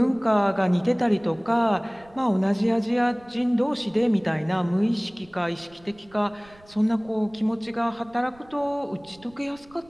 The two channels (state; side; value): noise; right; rumble, 27 dB below the sound